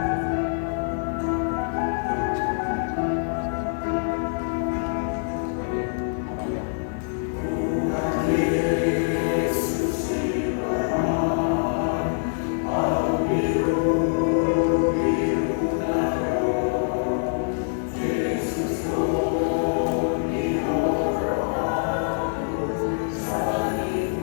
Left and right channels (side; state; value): right; silent; 61 dB below the other